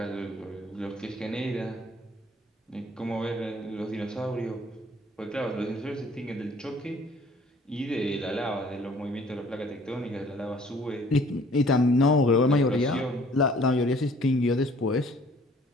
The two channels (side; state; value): both; normal; correlation 0.56